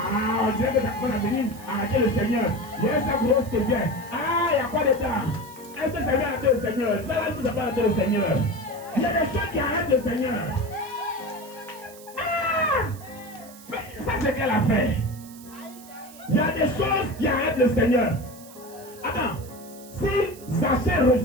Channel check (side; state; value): right; noise; hiss, 20 dB below the sound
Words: on dirait que ça commence à venir arrêter le Seigneur. Il y a sa grosse qui vient. Ah, il y a quoi de temps? Est-ce que ça vient arrêter le Seigneur? Ça va nous arrêter le Seigneur. Il y a des choses qui arrêtent le Seigneur. Ah! Mais ça c'est qu'elle a fait. Il y a des choses qui arrêtent le Seigneur. Attends. Si Zachée